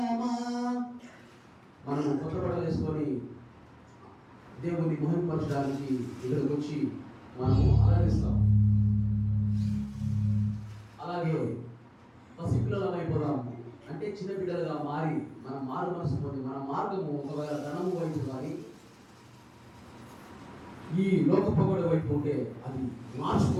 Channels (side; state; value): both; identical; correlation 1.00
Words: మనం కొత్త బట్టలు వేసుకొని దేవుని మహిమపరచడానికి ఇక్కడికి వచ్చి మనము అలరిస్తాం. అలాగే పసిపిల్లలం అయిపోదాం అంటే చిన్న బిడ్డలుగా మారి మన మారు మనసు పొంది మన మార్గము ఒకవేళ ధనము వైపు కానీ ఈ లోక పొగడ వైపు ఉంటే అది